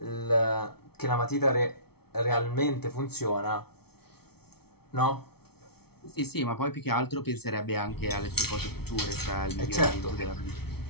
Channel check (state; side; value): late; right; 0.95 ms